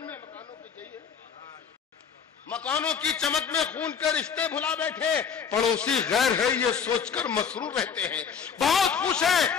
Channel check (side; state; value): right; quieter; 6.8 dB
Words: مکانوں کی چمک میں خون کے رشتے بھلا بیٹھے. پڑوسی غیر ہے یہ سوچ کر مسرور رہتے ہیں, بہت خوش ہے